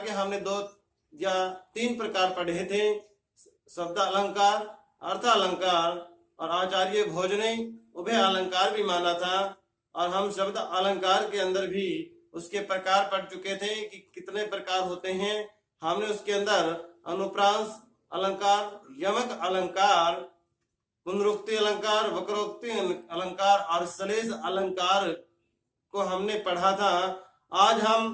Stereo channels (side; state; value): both; identical; correlation 1.00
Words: के हमने 2 या 3 प्रकार पढ़े थे, शब्द अलंकार, अर्थ अलंकार और आचार्य भोज ने उभय अलंकार भी माना था। और हम शब्द अलंकार के अंदर भी उसके प्रकार पढ़ चुके थे कि कितने प्रकार होते हैं। हमने उसके अंदर अनुप्रास अलंकार, यमक अलंकार, पुनरुक्ति अलंकार, वक्रोक्ति अलंकार और सलेश अलंकार को हमने पढ़ा था। आज हम